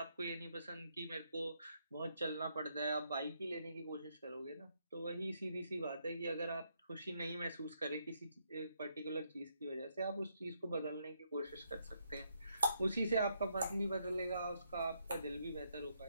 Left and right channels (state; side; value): inverted; both; correlation -0.75